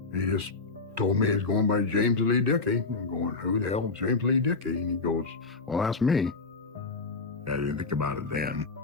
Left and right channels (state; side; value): quieter; right; 4.0 dB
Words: He just told me he's going by James Lee Dickey. I'm going, who the hell is James Lee Dickey? And he goes, well, that's me. I didn't think about it then.